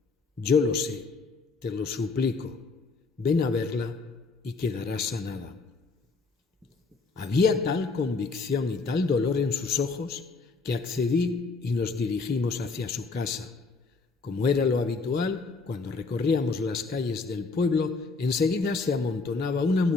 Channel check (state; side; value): quieter; right; 4.2 dB